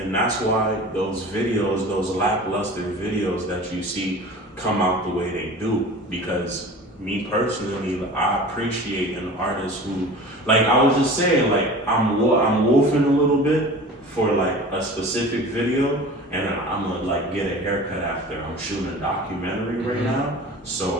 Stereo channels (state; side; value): normal; both; correlation 0.38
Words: that's why those videos, those lackluster videos that you see come out the way they do. Because me personally, I appreciate an artist who, like I was just saying, like I'm wolfing a little bit for like a specific video, and I'm gonna like get a haircut after. I'm shooting a documentary right now.